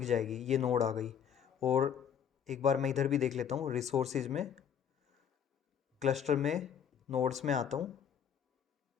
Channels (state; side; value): quieter; right; 8.1 dB